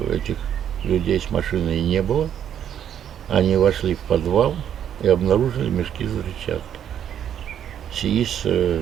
этих людей с машиной не было. Они вошли в подвал и обнаружили мешки с взрывчаткой. СИИС,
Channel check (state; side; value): quieter; left; 9.5 dB